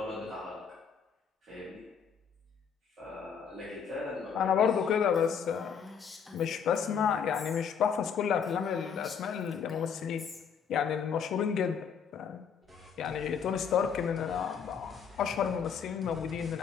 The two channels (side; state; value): right; quieter; 7.0 dB